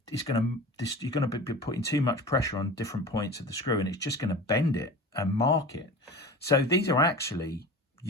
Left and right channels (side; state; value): both; normal; correlation 0.35